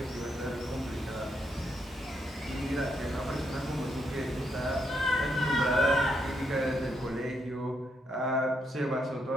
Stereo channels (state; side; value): normal; both; correlation 0.78